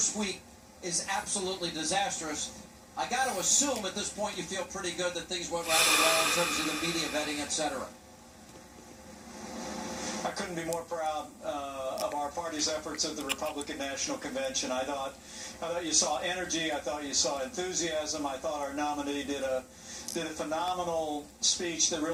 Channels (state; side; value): identical; both; correlation 1.00